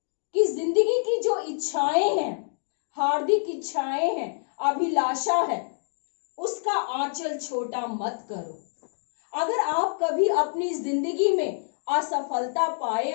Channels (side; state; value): right; silent; digital silence